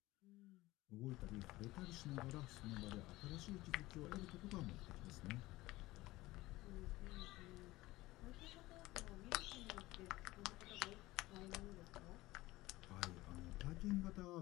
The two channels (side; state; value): right; quieter; 18.7 dB